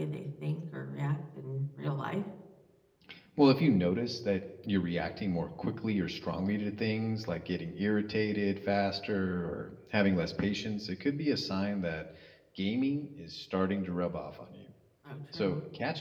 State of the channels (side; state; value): both; identical; correlation 1.00